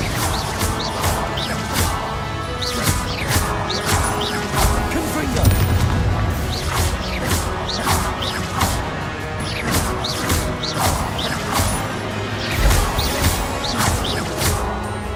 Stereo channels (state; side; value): identical; both; correlation 1.00